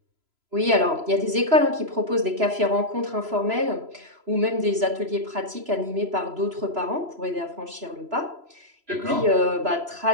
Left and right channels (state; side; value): late; left; 3.0 ms